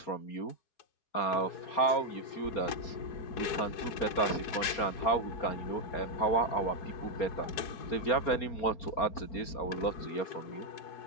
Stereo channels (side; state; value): right; late; 4.3 ms